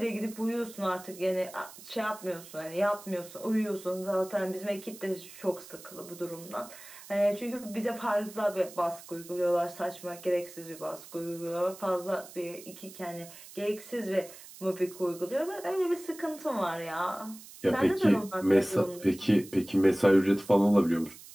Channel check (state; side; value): noise; right; hiss, 17 dB below the sound